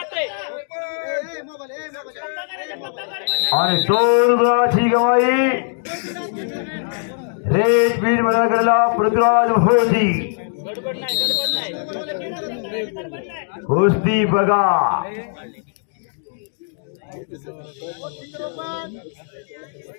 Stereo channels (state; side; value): silent; right; digital silence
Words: आणि 2 गुणाची कमाई. रेड बीड मध्ये गेलेला पृथ्वीराज भोजी. गडबड नाही गडबड नाही. कुस्ती बघा.